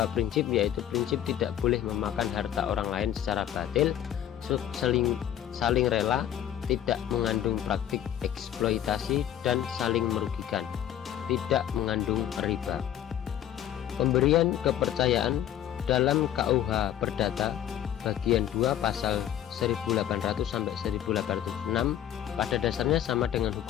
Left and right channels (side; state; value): right; quieter; 11.0 dB